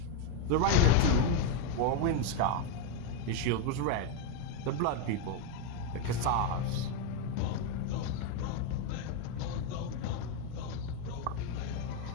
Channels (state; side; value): different; both; correlation 0.01